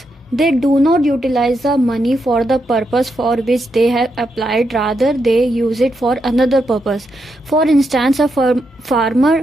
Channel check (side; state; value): both; normal; correlation 0.82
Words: They do not utilize the money for the purpose for which they have applied, rather they use it for another purpose. For instance, a